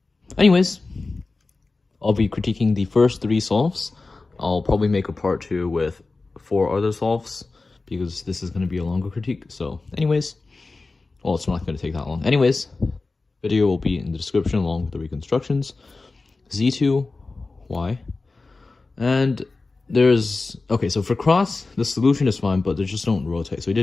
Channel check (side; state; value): right; quieter; 3.6 dB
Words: anyways, I'll be critiquing the first 3 solves. I'll probably make a part 2 with 4 other solves, because this is going to be a longer critique. So, anyways, well, it's not going to take that long. Anyways, video will be in the description along with the reconstructions. Z2, Y. And there's... Okay, so for cross, the solution is fine, but they just don't rotate. So we